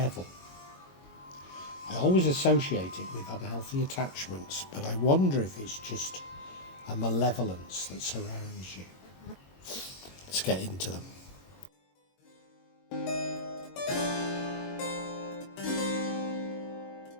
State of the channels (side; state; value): right; late; 22 ms